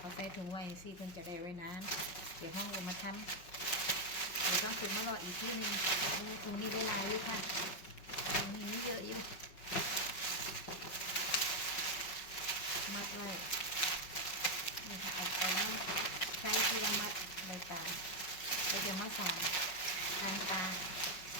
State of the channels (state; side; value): late; right; 5.4 ms